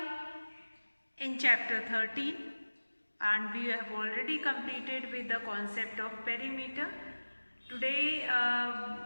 in chapter 13 and we have already completed with the concept of perimeter. Today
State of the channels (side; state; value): both; inverted; correlation -1.00